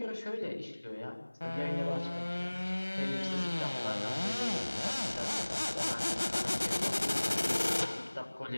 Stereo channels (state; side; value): inverted; both; correlation -1.00